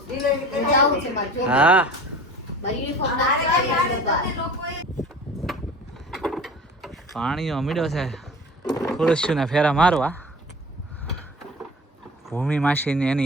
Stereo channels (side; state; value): both; normal; correlation 0.41